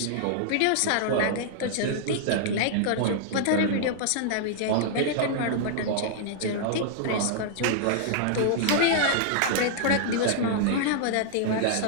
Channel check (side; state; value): both; different; correlation -0.01